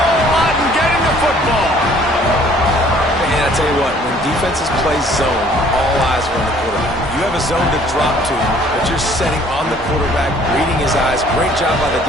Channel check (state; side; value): normal; both; correlation 0.57